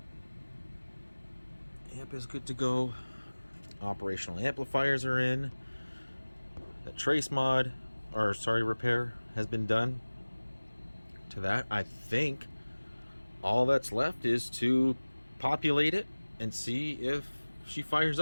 Amp is good to go. Operational amplifiers are in. The trace mod, or sorry, repair has been done to that. I think all that's left is to populate it and see if she fires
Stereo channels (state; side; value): inverted; both; correlation -1.00